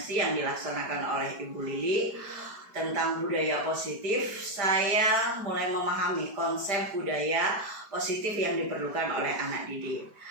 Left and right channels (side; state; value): left; late; 5.0 ms